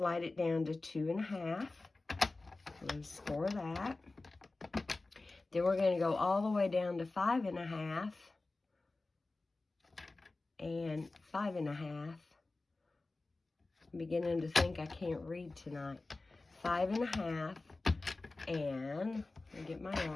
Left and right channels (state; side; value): quieter; right; 3.3 dB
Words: it down to 2 1/2. We're going to score that. Then we're going to go all the way down to 5 1/2. And 5 1/2. I'm beginning to think I can't read tonight. 5 1/2. And I'll get my